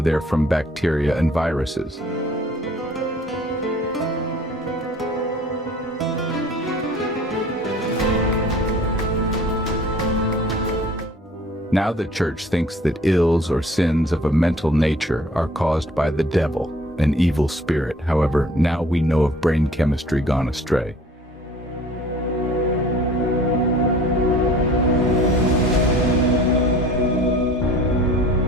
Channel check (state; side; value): normal; both; correlation 0.50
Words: they're from bacteria and viruses. Now the church thinks that ills or sins of a mental nature are caused by the devil, an evil spirit. However, now we know of brain chemistry gone astray.